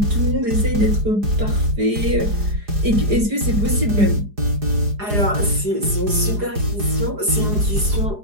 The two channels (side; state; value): left; late; 4.9 ms